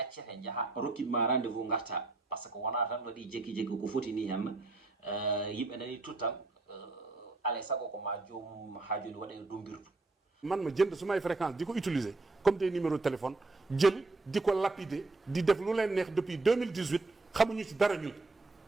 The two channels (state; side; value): quieter; left; 3.3 dB